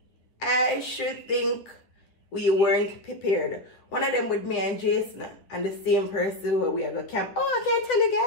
I should think we weren't prepared. One of them with me and Jason and the same person where we are going to camp. Oh, I can't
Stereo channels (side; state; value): right; late; 9.7 ms